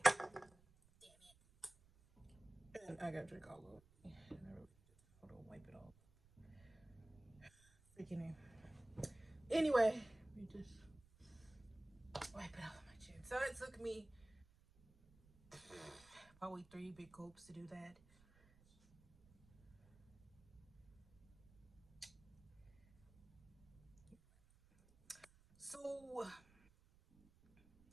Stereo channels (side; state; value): right; noise; rumble, 26 dB below the sound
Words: And I gotta drink all of it. And I really hold on, wipe it off. Freaking in. Anyway, we just wipe it off of my chin. So it took me probably 3 big gulps to do that. So